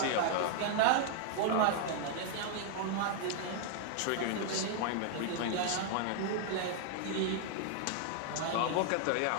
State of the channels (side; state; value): both; different; correlation 0.00